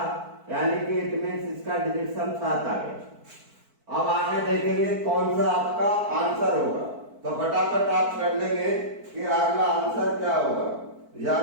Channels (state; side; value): late; left; 4.5 ms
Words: यानी कि इट मींस इसका डिजिट सम 7 आ गया। अब आगे देखेंगे कौन सा आपका आंसर होगा, तो फटाफट आप कर लेंगे कि अगला आंसर क्या होगा,